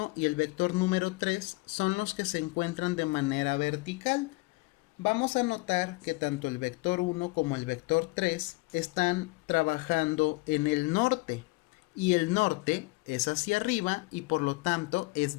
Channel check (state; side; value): quieter; right; 24.2 dB